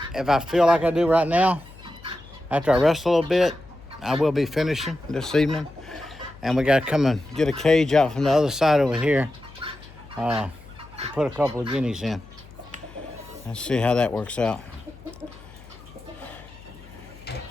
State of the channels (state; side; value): noise; left; hum, 21 dB below the sound